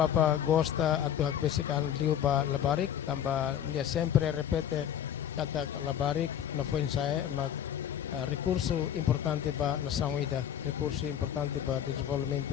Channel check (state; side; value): quieter; right; 9.8 dB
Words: gosta atau hagbesikan liu ba labarik tamba dia sempre repete kata labarik na foi saya mag recurso importante ba na sangida recurso importante ba